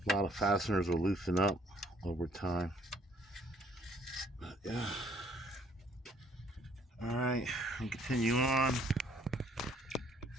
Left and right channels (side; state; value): both; normal; correlation 0.62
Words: A lot of fasteners will loosen up over time. But yeah. All right, and continue on.